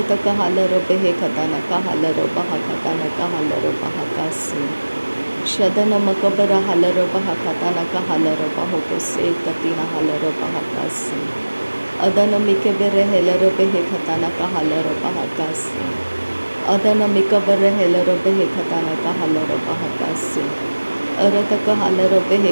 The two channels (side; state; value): both; inverted; correlation -1.00